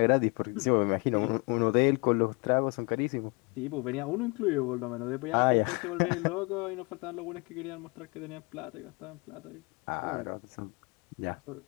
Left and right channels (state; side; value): quieter; right; 29.8 dB